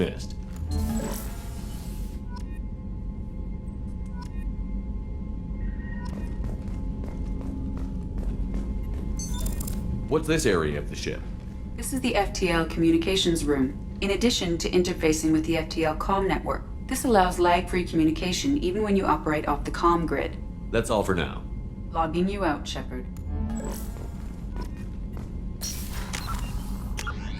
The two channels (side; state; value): both; identical; correlation 1.00